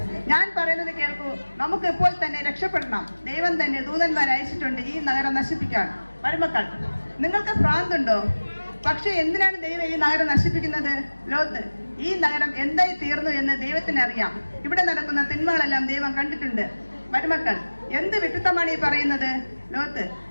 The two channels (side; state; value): both; inverted; correlation -1.00